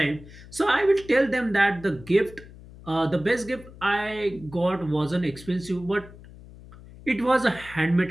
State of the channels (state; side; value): noise; left; hum, 19 dB below the sound